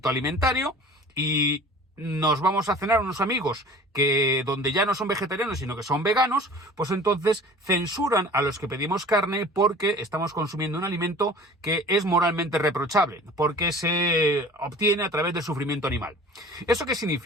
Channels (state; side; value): normal; both; correlation 0.44